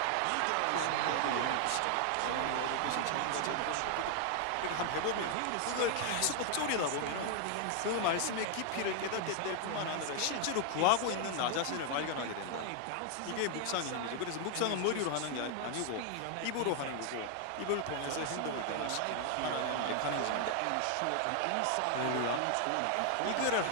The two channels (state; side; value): different; both; correlation 0.00